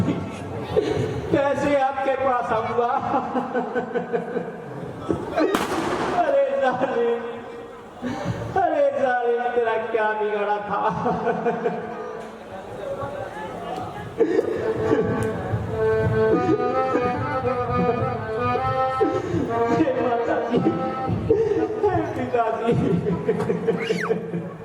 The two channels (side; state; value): both; identical; correlation 1.00